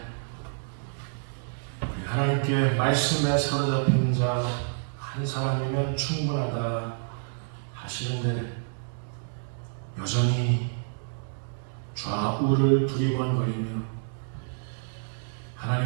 우리 하나님께 말씀에 사로잡힌 자 한 사람이면 충분하다 하시는데 여전히 좌우를 두리번거리며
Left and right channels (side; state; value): left; silent; digital silence